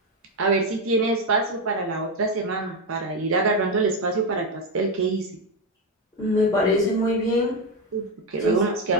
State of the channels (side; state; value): both; normal; correlation 0.09